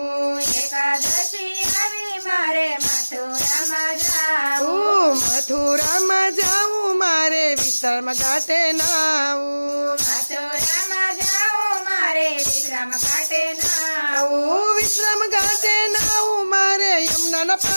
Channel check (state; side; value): inverted; both; correlation -1.00